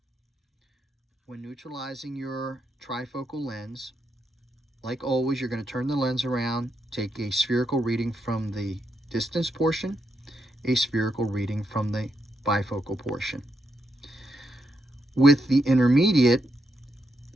When neutralizing your trifocal lens, like always, you're going to turn the lens around, take a spherical reading from the distance portion, a spherical reading from the bifocal portion. With the intermediate,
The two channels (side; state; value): both; normal; correlation 0.82